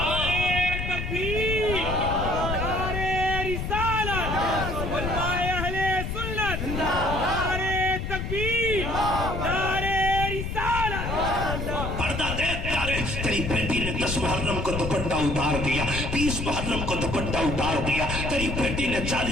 تکبیر، نعرے رسالت، علماء اہل سنت، نعرے تکبیر، نعرے رسالت. پردہ دیکھ پیارے، تیری بیٹی نے 10 محرم کو دوپٹہ اتار دیا، 20 محرم کو دوپٹہ اتار دیا. تیری بیٹی نے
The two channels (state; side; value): noise; left; rumble, 3 dB below the sound